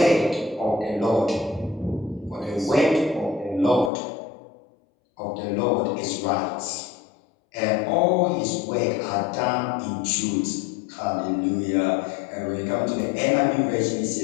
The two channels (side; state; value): right; drops out; at 3.9 s